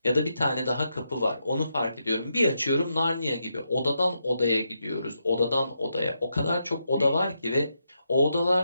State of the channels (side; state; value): both; inverted; correlation -0.83